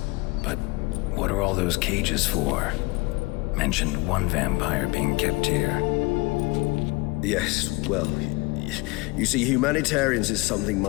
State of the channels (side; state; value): right; quieter; 24.5 dB